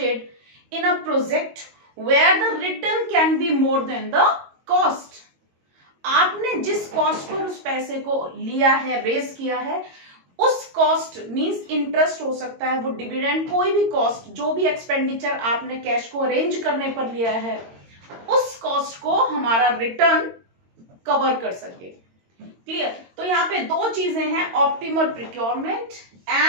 in a project where the return can be more than the cost. आपने जिस कॉस्ट पर उस पैसे को लिया है, रेज किया है, उस कॉस्ट मींस इंटरेस्ट हो सकता है, वो डिविडेंड, कोई भी कॉस्ट, जो भी एक्सपेंडिचर आपने कैश को अरेंज करने पर लिया है, उस कॉस्ट को हमारा रिटर्न कवर कर सके. क्लियर? तो यहाँ पे दो चीजें हैं, optimal procurement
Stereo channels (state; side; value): late; left; 22 ms